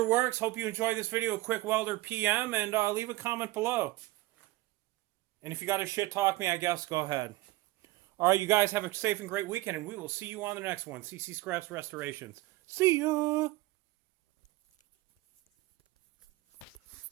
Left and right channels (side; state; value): left; quieter; 18.6 dB